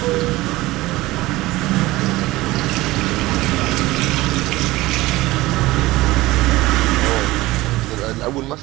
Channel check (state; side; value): quieter; left; 18.8 dB